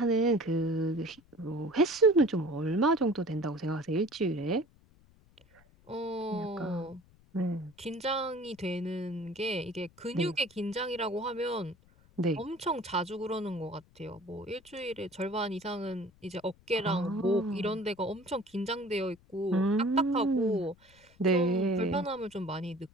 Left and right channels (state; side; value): noise; left; rumble, 29 dB below the sound